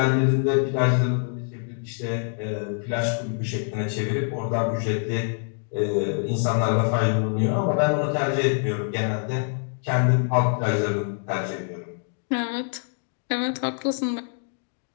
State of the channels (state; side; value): silent; right; 62 dB below the other